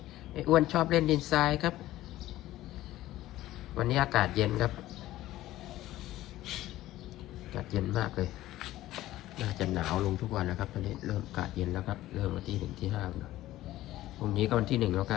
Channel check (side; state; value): right; quieter; 15.3 dB